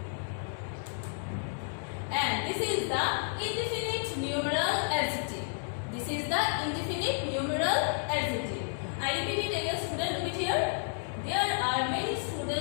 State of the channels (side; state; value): right; silent; digital silence